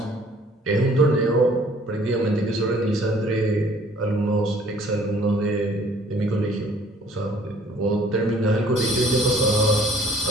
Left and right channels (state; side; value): normal; both; correlation 0.57